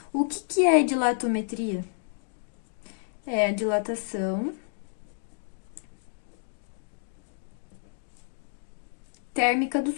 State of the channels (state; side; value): silent; right; digital silence